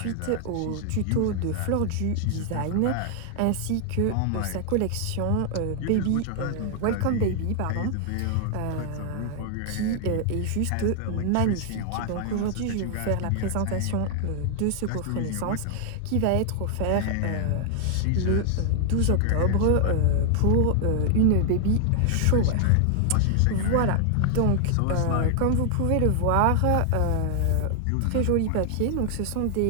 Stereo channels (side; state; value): both; different; correlation 0.00